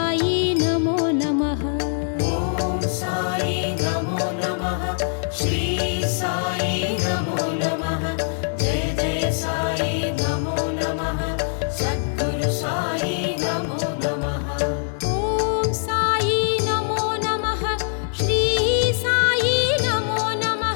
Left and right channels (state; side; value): silent; right; digital silence